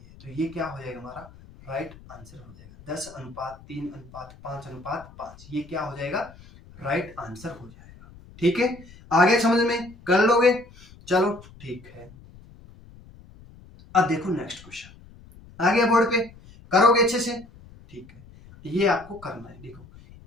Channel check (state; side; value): noise; left; rumble, 22 dB below the sound